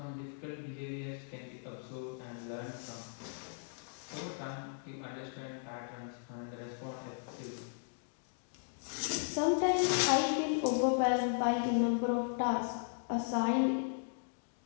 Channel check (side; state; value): right; silent; digital silence